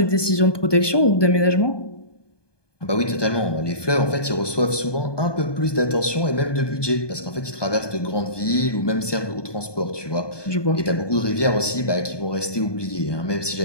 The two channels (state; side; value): late; right; 1.2 ms